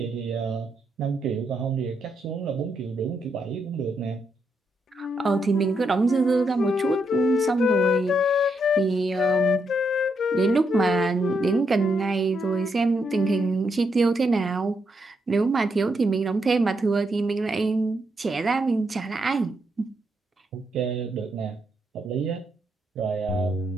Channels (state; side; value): normal; both; correlation 0.80